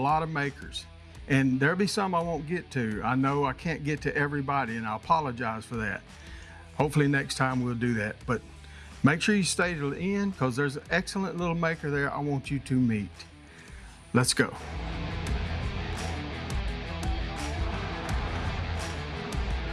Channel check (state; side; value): identical; both; correlation 1.00